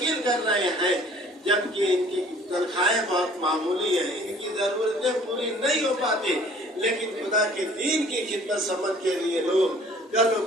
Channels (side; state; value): both; normal; correlation 0.53